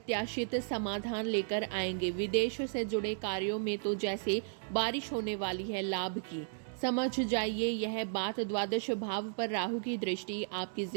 समाधान लेकर आएंगे। विदेश से जुड़े कार्यों में तो जैसे बारिश होने वाली है लाभ की। समझ जाइए, यह बात द्वादश भाव पर राहु की दृष्टि आपकी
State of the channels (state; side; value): silent; left; digital silence